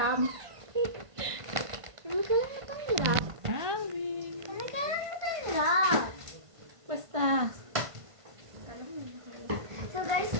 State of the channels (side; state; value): left; late; 1.5 ms